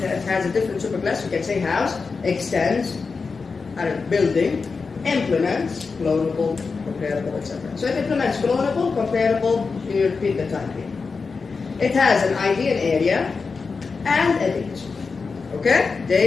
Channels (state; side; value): quieter; right; 4.7 dB